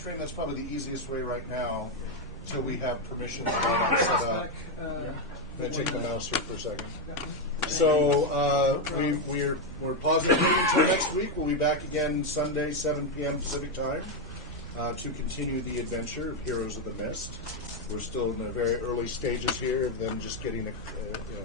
That's probably the easiest way right now, until we have permissions set up. Can I check the mouse here for a second? So we're positive until next week. We'll be back again Sunday, 7 p.m. Pacific time, to continue the adventure of Heroes of the Mist. We're still in the very early stages here of them just getting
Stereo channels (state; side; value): normal; both; correlation 0.04